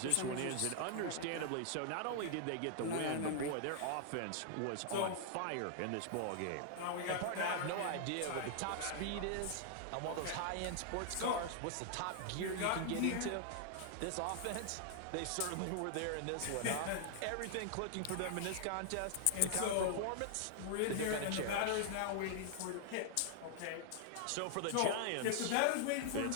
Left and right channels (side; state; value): both; different; correlation -0.01